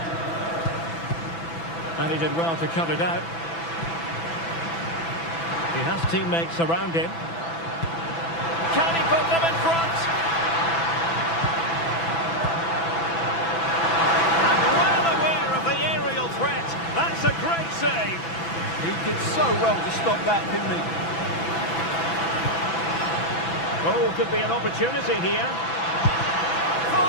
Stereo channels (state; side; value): late; right; 6.0 ms